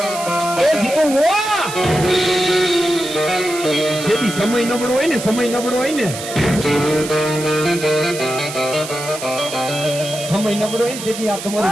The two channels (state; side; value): noise; right; hiss, 9 dB below the sound